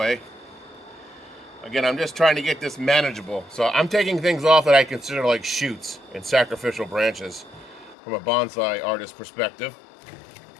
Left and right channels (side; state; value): right; drops out; at 8.0 s